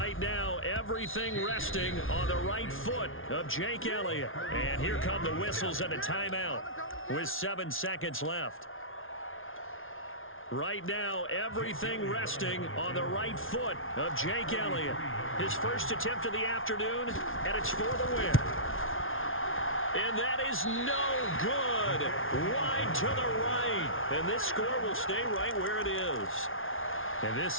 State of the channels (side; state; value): right; late; 0.59 ms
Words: now, everything resting on the right foot of Jake Elliott. And here come the whistles and a timeout with 7 seconds left. Right now, everything resting on the right foot of Jake Elliott. His first attempt of the afternoon, and it's for the win. And that is no good. Wide to the right. And this score will stay right where it is. And this